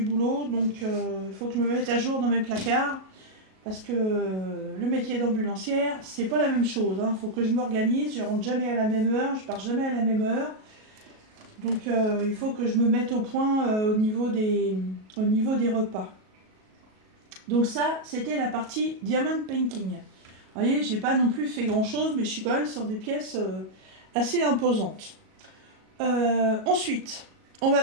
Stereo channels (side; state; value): left; late; 37 ms